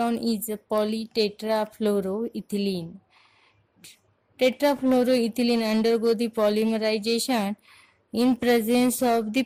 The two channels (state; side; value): identical; both; correlation 1.00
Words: is a polytetrafluoroethylene. Tetrafluoroethylene undergo the polymerization in presence of the